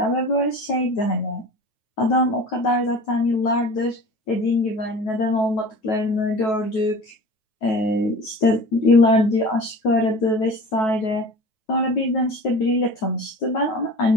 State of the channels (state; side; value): late; right; 9.2 ms